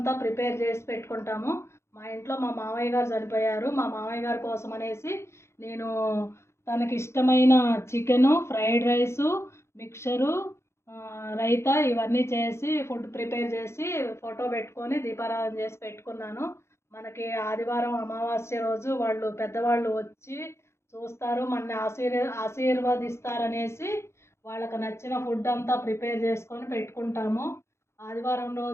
ప్రిపేర్ చేసి పెట్టుకుంటాము. మా ఇంట్లో మా మామయ్య గారు చనిపోయారు. మా మామయ్య గారి కోసం అనేసి నేను తనకి ఇష్టమైన chicken, fried rice, mixture, raita ఇవన్నీ చేసి ఫుడ్ ప్రిపేర్ చేసి ఫోటో పెట్టుకొని దీపారాధన చేసి పెట్టుకున్నాను. మనకి ఆదివారం అమావాస్య రోజు పెద్దవాళ్ళు వచ్చి చూస్తారు, మనని ఆశీర్వదిస్తారనేసి వాళ్ళకి నచ్చిన ఫుడ్ అంతా ప్రిపేర్ చేసుకొని పెట్టుకుంటాము. ఆదివారం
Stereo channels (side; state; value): right; late; 0.13 ms